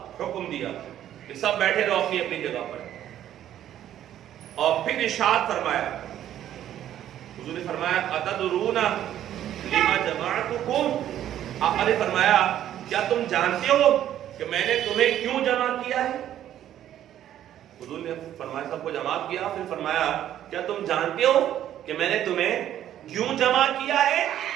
حکم دیا کہ سب بیٹھے رہو اپنی اپنی جگہ پر. اور پھر ارشاد فرمایا، حضور نے فرمایا اتدرون لما جمعتکم، آپ نے فرمایا کیا تم جانتے ہو کہ میں نے تمہیں کیوں جمع کیا ہے؟ حضور نے فرمایا سب کو جمع کیا، پھر فرمایا کیا تم جانتے ہو کہ میں نے تمہیں کیوں جمع کیا ہے؟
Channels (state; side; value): quieter; left; 11.4 dB